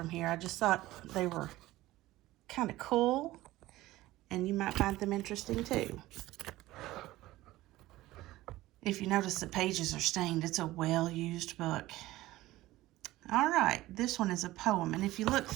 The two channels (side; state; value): left; quieter; 17.0 dB